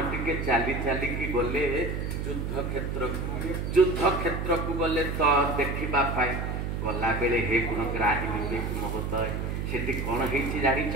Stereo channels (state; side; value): noise; right; hum, 3 dB below the sound